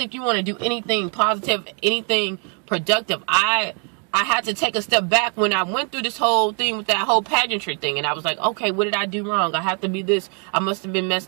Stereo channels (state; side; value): quieter; left; 39.2 dB